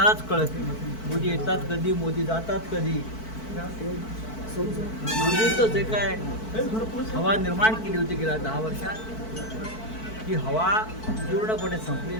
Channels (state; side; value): late; right; 4.5 ms